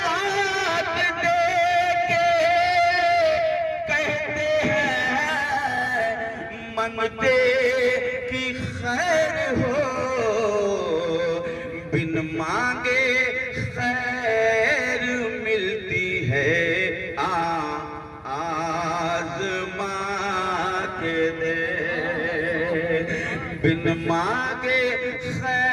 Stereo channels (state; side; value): identical; both; correlation 1.00